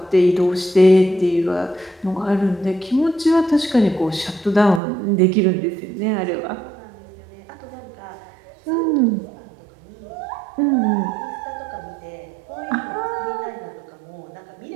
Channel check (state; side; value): drops out; left; at 4.8 s